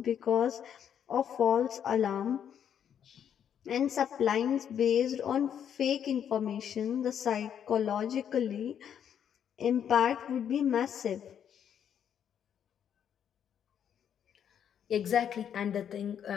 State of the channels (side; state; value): right; quieter; 8.8 dB